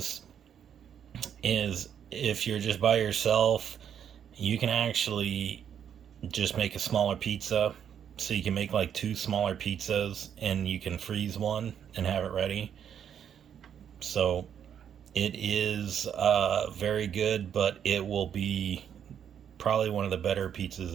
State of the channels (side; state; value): left; quieter; 8.7 dB